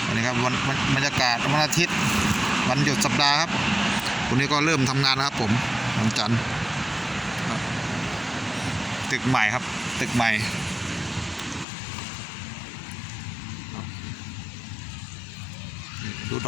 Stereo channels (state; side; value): drops out; right; at 11.7 s